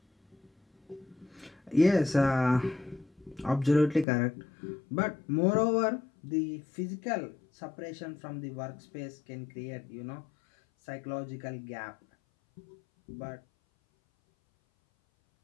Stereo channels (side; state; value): right; drops out; at 4.0 s